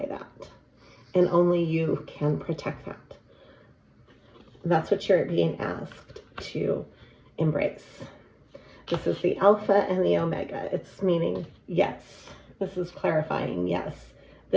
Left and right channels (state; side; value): identical; both; correlation 1.00